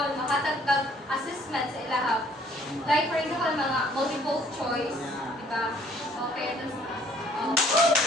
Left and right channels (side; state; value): both; normal; correlation 0.59